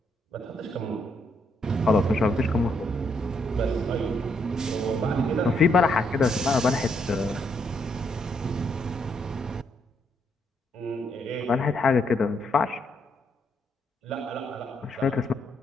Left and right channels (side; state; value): both; normal; correlation 0.75